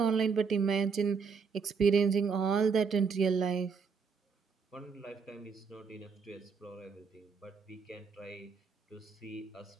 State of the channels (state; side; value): quieter; left; 5.6 dB